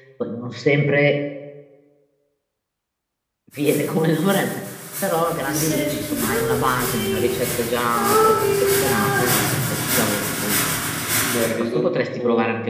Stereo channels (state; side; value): identical; both; correlation 1.00